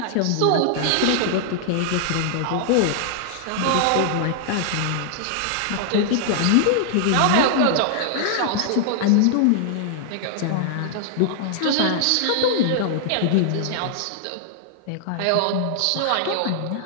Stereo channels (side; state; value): both; different; correlation -0.01